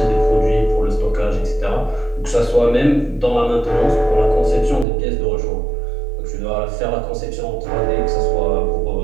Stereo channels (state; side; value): drops out; left; at 4.9 s